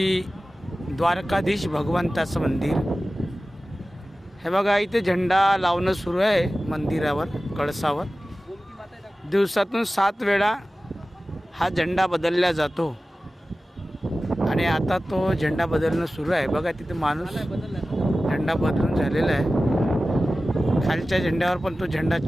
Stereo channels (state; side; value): normal; both; correlation 0.96